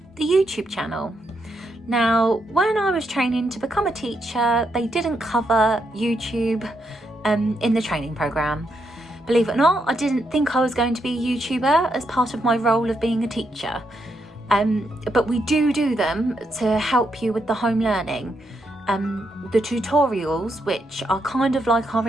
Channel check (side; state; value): both; normal; correlation 0.80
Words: The YouTube channel. Now, when I was training to become a teacher, they didn't cover YouTube in the training programme. Believe it or not, I didn't think I was going to be a YouTuber as part of my role of being a teacher. But we do them to help you with the home learning. The tutorials, which are kind of like our